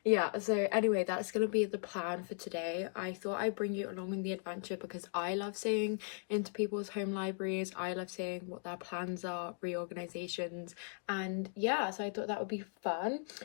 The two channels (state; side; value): silent; right; 53 dB below the other